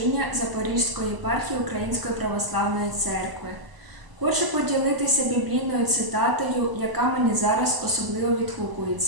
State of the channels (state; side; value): late; left; 1.0 ms